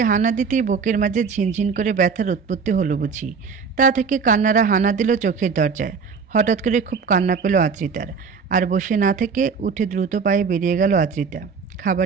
হানা দিতেই বুকের মাঝে ঝিনঝিন করে ব্যথার উৎপত্তি হলো বুঝি। তা থেকে কান্নারা হানা দিল চোখের দরজায়। হঠাৎ করে খুব কান্না পেল আদ্রিতার। আর বসে না থেকে উঠে দ্রুত পায়ে বেরিয়ে গেল আদ্রিতা।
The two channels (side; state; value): left; quieter; 5.6 dB